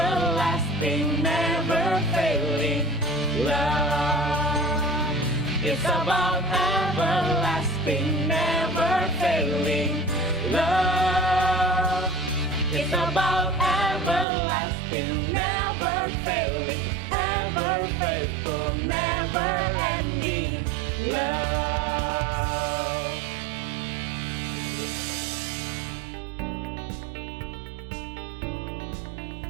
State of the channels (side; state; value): left; drops out; at 14.2 s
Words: never failing love. It's about everlasting, never failing love. It's about everlasting, never failing, ever faithful, never ending love.